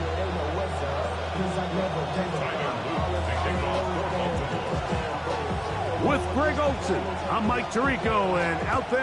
With Greg Olsen, I'm Mike Tirico, and out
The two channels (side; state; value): both; identical; correlation 1.00